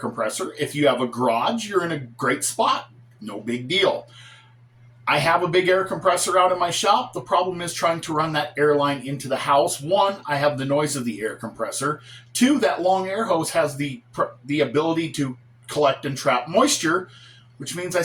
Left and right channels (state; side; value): identical; both; correlation 1.00